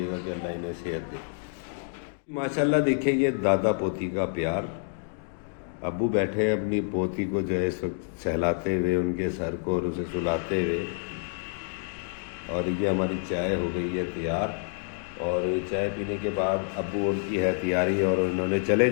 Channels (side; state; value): right; silent; 59 dB below the other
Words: कि अल्लाह इन्हें सेहत दे। माशाल्लाह देखिए ये दादा पोती का प्यार। अब्बू बैठे अपनी पोती को जो है इस वक्त सहलाते हुए, उनके सर को और उसे सुलाते हुए। और ये हमारी चाय हो गई है तैयार और चाय पीने के बाद अब्बू उनकी है तैयारी और उन्होंने चले